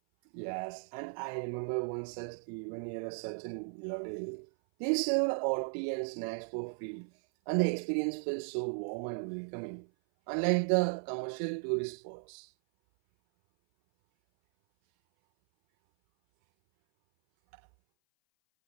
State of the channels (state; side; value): silent; left; 54 dB below the other